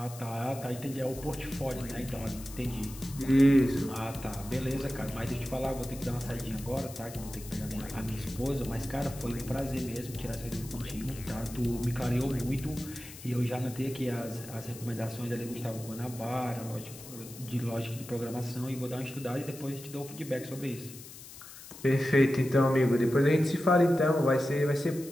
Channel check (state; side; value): noise; left; hiss, 15 dB below the sound